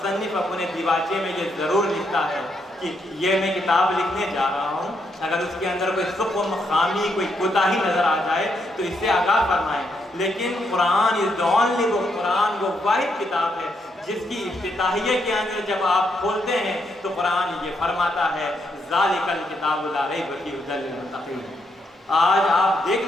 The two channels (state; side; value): normal; both; correlation 0.78